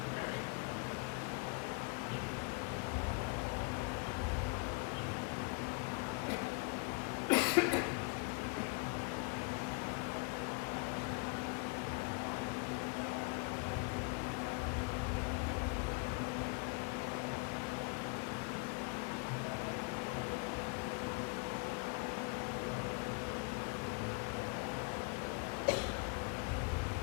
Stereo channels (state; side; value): quieter; right; 32.3 dB